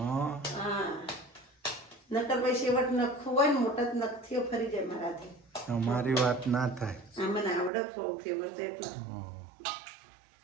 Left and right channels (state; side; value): drops out; left; at 7.7 s